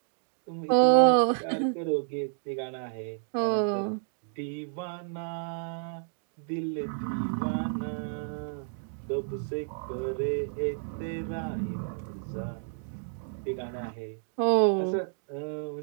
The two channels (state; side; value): silent; left; digital silence